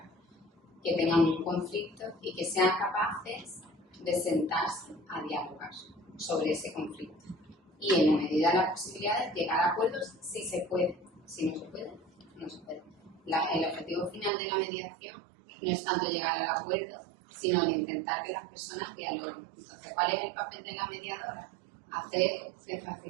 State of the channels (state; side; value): drops out; left; at 14.3 s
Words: que tengan un conflicto y que sean capaces de sentarse a dialogar sobre ese conflicto. Y en la medida de las posibilidades, llegar a acuerdos si se puede. Si no se puede, no se puede. El objetivo final de la mediación no es tanto llegar al acuerdo, sino el intentar que las personas dialoguen. Entonces, ¿cuál es el papel de la mediadora? Hacer de